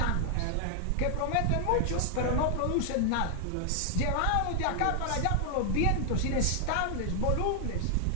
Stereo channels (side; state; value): both; different; correlation 0.00